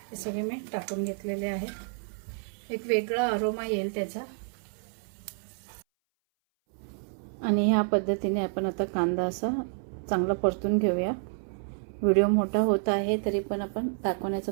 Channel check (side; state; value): left; silent; 58 dB below the other